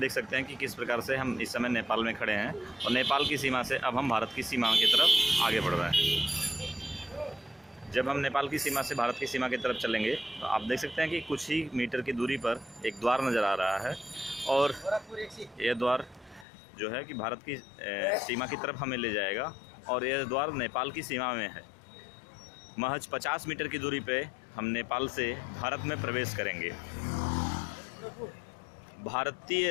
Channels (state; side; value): drops out; right; at 16.4 s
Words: सकते हैं कि किस प्रकार से हम इस समय नेपाल में खड़े हैं और नेपाल की सीमा से अब हम भारत की सीमा की तरफ आगे बढ़ रहे हैं। जब हम नेपाल की सीमा से भारत की सीमा की तरफ चलेंगे तो आप देख सकते हैं कि कुछ ही मीटर की दूरी पर एक द्वार नज़र आ रहा है और यह द्वार जो है कि भारत की सीमा की तरफ हमें ले जाएगा और यह द्वार नेपाल की सीमा में है। महज 50 मीटर की दूरी पे हम नेपाल से भारत में प्रवेश करेंगे।